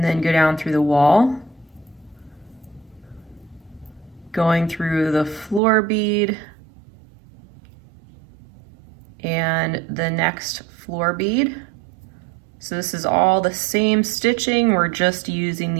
then go down through the wall, going through the floor bead and the next floor bead. So this is all the same stitching, we're just using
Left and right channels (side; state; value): left; drops out; at 5.6 s